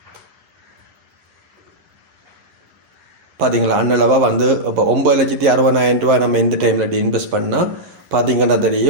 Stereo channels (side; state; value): left; late; 11 ms